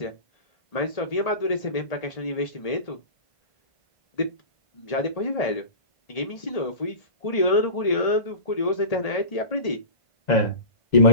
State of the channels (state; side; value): late; right; 1.8 ms